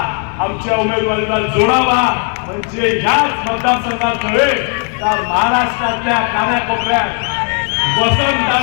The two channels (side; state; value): right; quieter; 39.3 dB